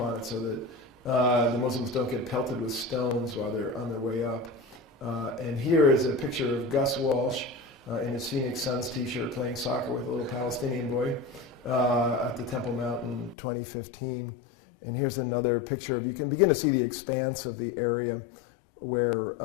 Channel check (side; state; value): right; drops out; at 13.4 s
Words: on it so that the Muslims don't get pelted with stones while they're on their way up. And here is a picture of Gus Walsh in his Phoenix Suns t-shirt playing soccer with a little Palestinian boy at the Temple Mount in 2015. And here's another picture. You can begin to see the expanse of the area where